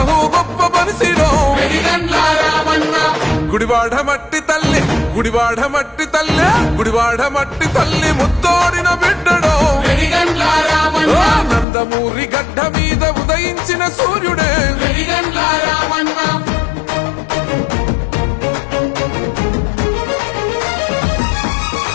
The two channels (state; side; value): drops out; right; at 11.7 s